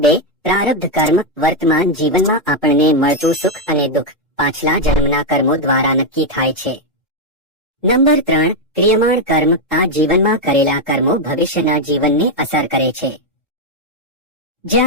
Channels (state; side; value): normal; both; correlation 0.02